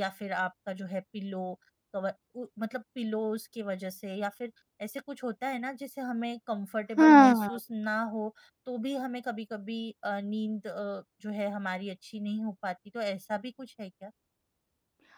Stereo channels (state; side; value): identical; both; correlation 1.00